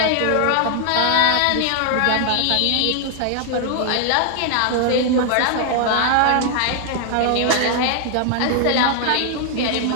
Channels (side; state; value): both; different; correlation 0.00